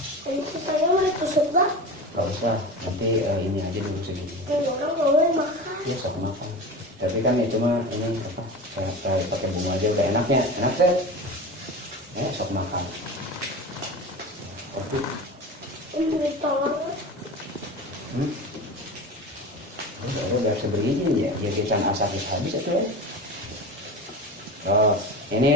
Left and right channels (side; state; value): both; normal; correlation 0.30